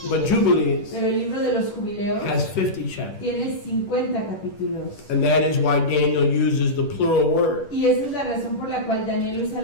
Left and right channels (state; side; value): late; right; 10 ms